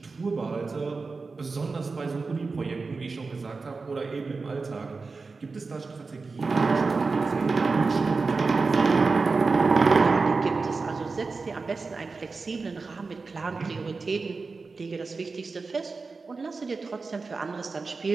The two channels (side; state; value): left; quieter; 4.2 dB